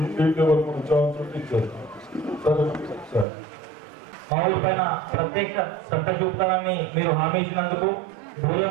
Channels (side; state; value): left; drops out; at 3.2 s